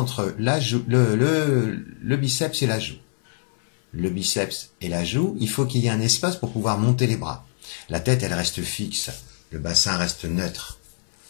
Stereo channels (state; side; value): silent; right; 63 dB below the other